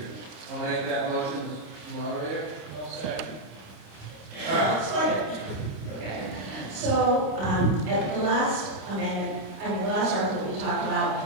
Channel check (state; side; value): late; left; 26 ms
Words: I'll make that motion, moderator. Second. Okay. So at the last amendment, the last article we talked